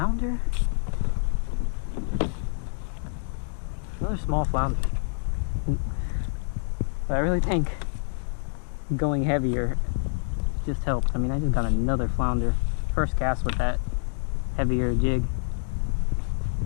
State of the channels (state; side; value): silent; right; digital silence